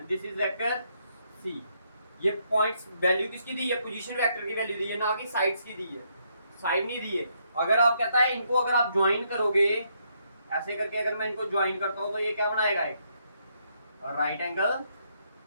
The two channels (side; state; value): both; inverted; correlation -0.75